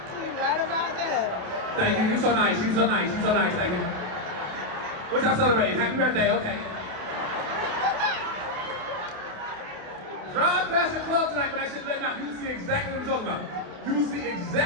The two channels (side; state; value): left; late; 28 ms